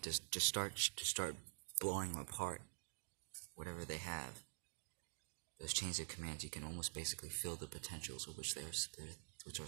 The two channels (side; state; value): left; silent; digital silence